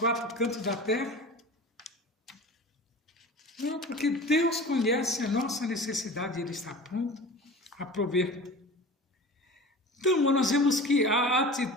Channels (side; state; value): both; normal; correlation 0.36